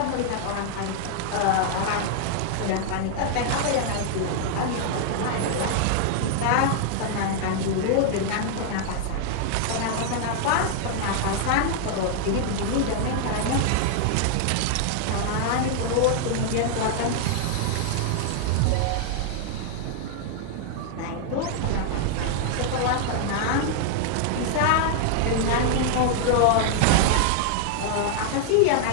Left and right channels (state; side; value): different; both; correlation 0.00